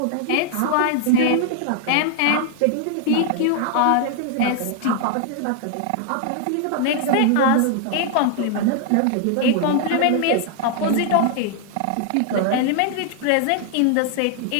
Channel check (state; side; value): different; both; correlation 0.00